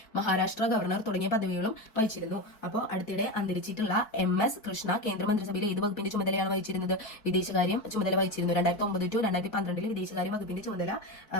മഹാരാഷ്ട്ര ഗവർണർ തുടങ്ങിയ പദവികളും വഹിച്ചിരുന്നു. അപ്പോൾ അടുത്തിടെ അന്തരിച്ചിട്ടുള്ള MS കൃഷ്ണ കേന്ദ്രമന്ത്രിസഭയിലെ ഏത് വകുപ്പിന്റെ ചുമതലയാണ് വഹിച്ചിരുന്നത്? വിദേശകാര്യം ചുമതല വഹിച്ചിരുന്നു. 2009-2012 വിദേശകാര്യ വകുപ്പിന്റെ ചുമതല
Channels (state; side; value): late; right; 4.6 ms